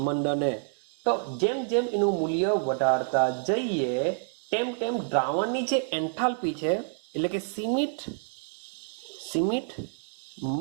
મંડને. તો જેમ જેમ એનું મૂલ્ય વધારતા જઈએ તેમ તેમ દ્રાવણની જે એન્થાલ્પી છે એટલે કે સીમિત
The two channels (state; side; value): silent; left; digital silence